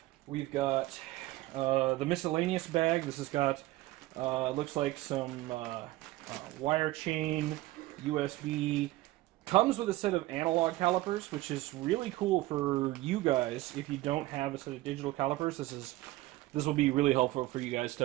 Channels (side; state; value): left; quieter; 18.0 dB